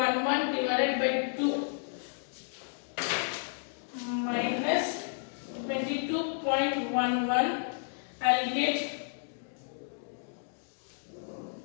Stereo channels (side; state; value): right; silent; digital silence